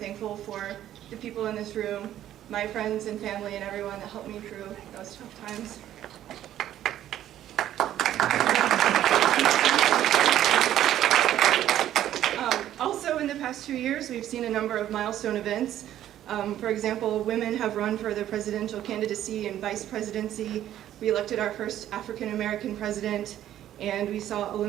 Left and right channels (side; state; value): left; quieter; 12.0 dB